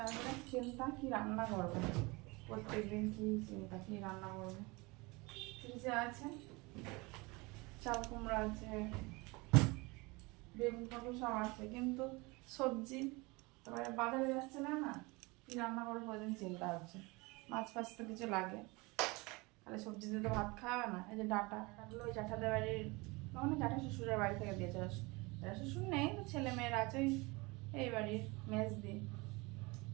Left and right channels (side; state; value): left; quieter; 25.2 dB